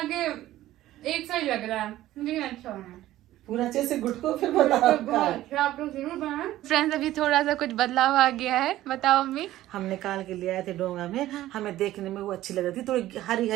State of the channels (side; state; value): left; quieter; 14.7 dB